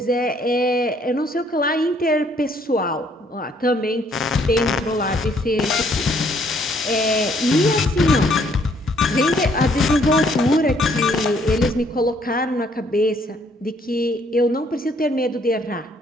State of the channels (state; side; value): normal; both; correlation 0.65